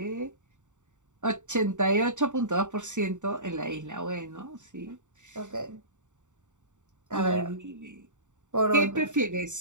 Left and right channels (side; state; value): left; late; 0.85 ms